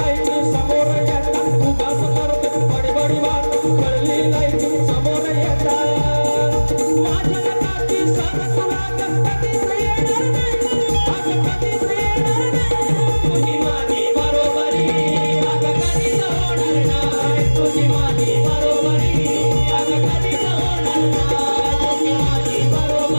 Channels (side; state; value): both; inverted; correlation -1.00